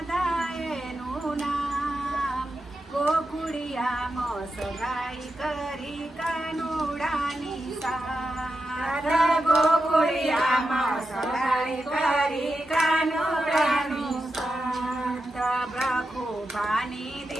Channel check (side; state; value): both; normal; correlation 0.89